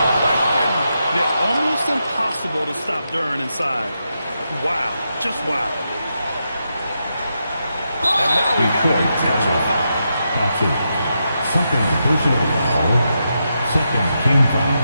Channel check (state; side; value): inverted; both; correlation -0.85